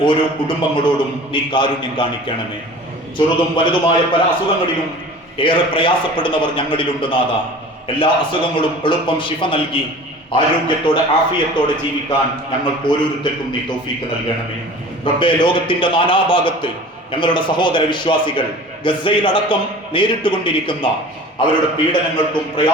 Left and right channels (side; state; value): both; normal; correlation 0.41